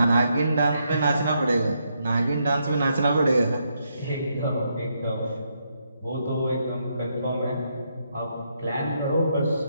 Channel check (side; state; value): both; inverted; correlation -0.78